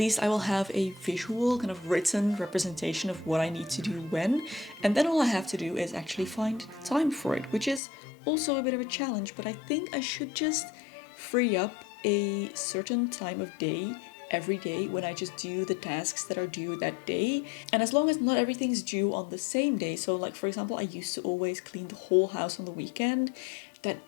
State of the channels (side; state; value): right; drops out; at 7.8 s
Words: I will have a visual kind of written representation of what I need to do when, and then all I have to do is actually find time for it, which is also a bit of a challenge, but I think I should just free up a certain time of day every day when I just do the tasks that are due that day. And as long as not everything's due on the same day, so like for example, I used to always clean the whole house on the weekend,